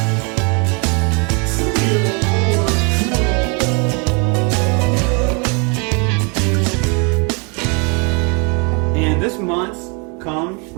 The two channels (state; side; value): quieter; left; 34.0 dB